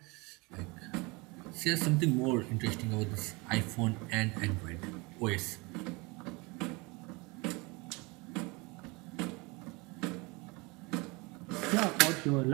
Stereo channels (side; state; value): left; quieter; 26.3 dB